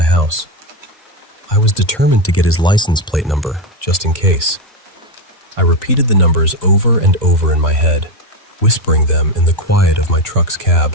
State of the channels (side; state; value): both; normal; correlation 0.11